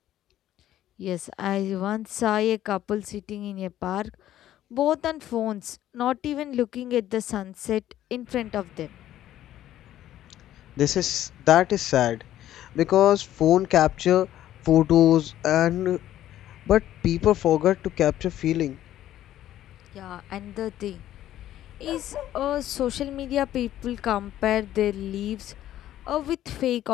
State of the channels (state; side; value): quieter; right; 12.7 dB